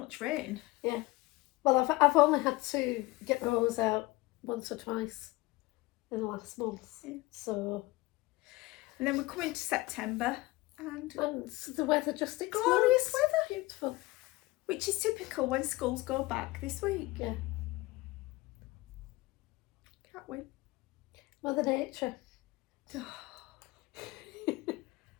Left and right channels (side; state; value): right; quieter; 21.0 dB